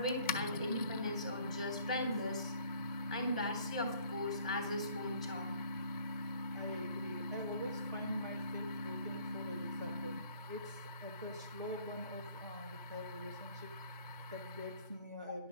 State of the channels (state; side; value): inverted; both; correlation -0.57